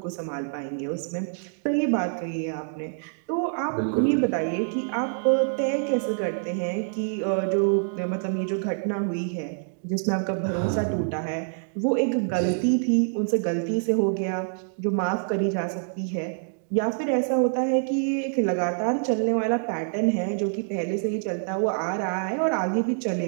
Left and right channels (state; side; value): silent; left; digital silence